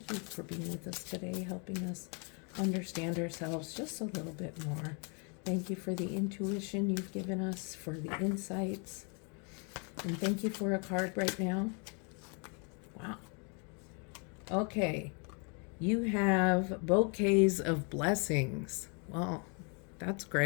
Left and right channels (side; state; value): right; quieter; 36.1 dB